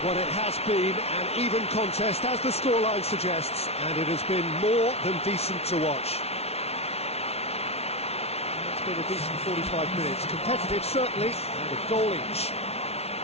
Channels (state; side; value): late; right; 0.30 ms